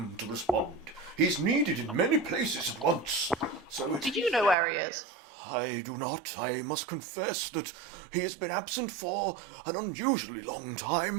to respond. He's needed in many places at once. So Do you know where he is? I do not. I must confess that he has been absent for an unusually long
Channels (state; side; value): drops out; left; at 4.5 s